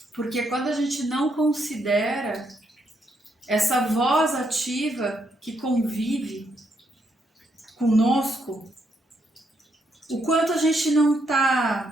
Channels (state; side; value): normal; both; correlation 0.76